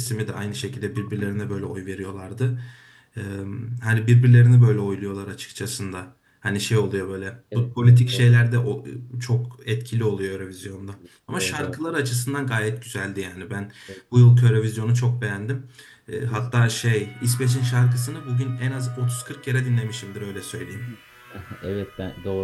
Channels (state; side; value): identical; both; correlation 1.00